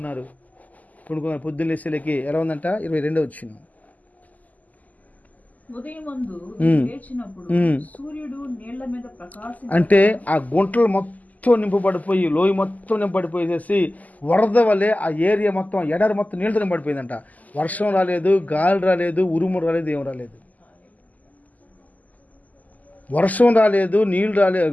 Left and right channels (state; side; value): late; right; 0.078 ms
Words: పొద్దున్న లేసేలకి ఎలా ఉందంట? 22 వచ్చింది. అంటే ఆ గుంటలు మొత్తం నింపబడిపోయి, లోయ మొత్తం నింపబడిపోయేసి వరద వల్లే ఆ ఏరియా మొత్తం, ఎడారి మొత్తం నీళ్ళతో నింపబడిపోయిందంట. వర్షం రాలేదు, గాలి రాలేదు, ఉరుము రాలేదు, ఏం రాలేదు. వర్షం రాలేదు, నీళ్ళు